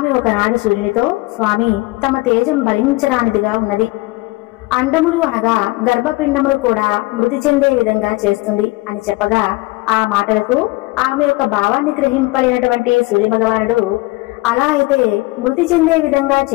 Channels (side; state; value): right; quieter; 21.9 dB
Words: ఒకనాడు సూర్యునితో, స్వామి, తమ తేజం భరించరానిదిగా ఉన్నది. అండములు అనగా గర్భపిండములు కూడా మృతి చెందే విధంగా చేస్తుంది అని చెప్పగా ఆ మాటలకు ఆమె యొక్క భావాన్ని గ్రహింపలేనటువంటి సూర్య భగవానుడు, అలా అయితే మృతి చెందే విధంగా